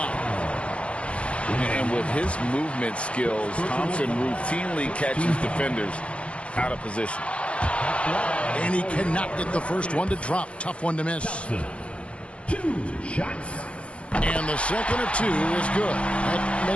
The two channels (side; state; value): right; late; 0.060 ms